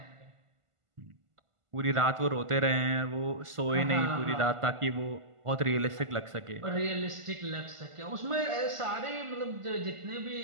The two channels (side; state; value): left; late; 1.5 ms